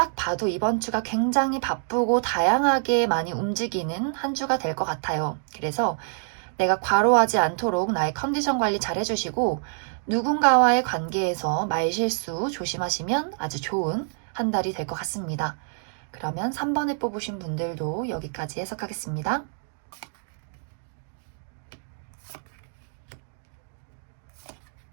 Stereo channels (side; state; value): left; silent; digital silence